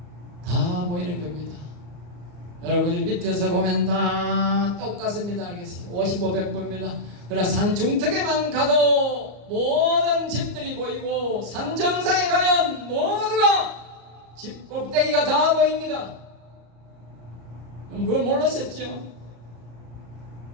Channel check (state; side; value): late; left; 35 ms